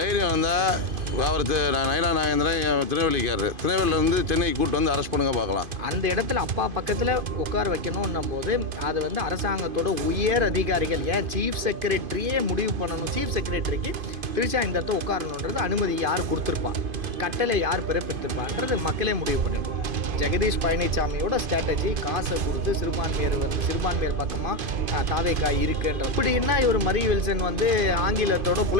இருந்தால் அவர் நயனா நாகேந்திரன் திருநெல்வேலிக்காரர், திருநெல்வேலியிலேருந்து சென்னைக்கு கூப்பிட்டு வந்து அரெஸ்ட் பண்ணுங்க பார்க்கலாம். அந்த இடத்துல அப்பா பக்கத்தில் உட்கார வைக்கணும்னும் போது அது வந்து அரசாங்கத்தோட உயர் அதிகாரிகள், ஏன் சீஃப் செக்ரட்டரியே முடிவு பண்ணணும். சீஃப் செக்ரட்டரிக்கு திரிஷா இந்த இடத்த உட்காரணுன்றது அனுமதி யார் கொடுத்துருப்பா, கட்டளை யார் பிறப்பித்திருப்பான்றது மக்களே முடிவு பண்ணிடுவோம். ஜெகதீஷ் பழனிசாமியோட ஸ்ட்ராட்டஜி காசை கொடுத்து சிறுபான்மையர் பக்கமாக தாவேக்காய் இருக்குன்ற இப்படின்னா இவர் மரி வில்சன் வந்து ஆங்கிலத்தோட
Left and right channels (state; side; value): late; left; 2.5 ms